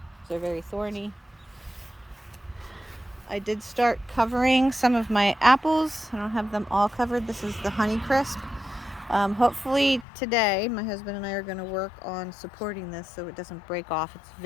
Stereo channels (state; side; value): drops out; right; at 10.1 s